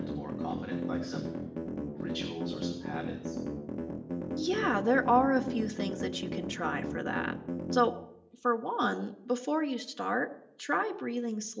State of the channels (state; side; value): identical; both; correlation 1.00